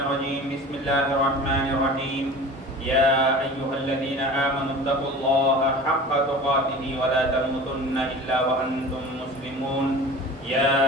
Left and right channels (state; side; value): normal; both; correlation 0.38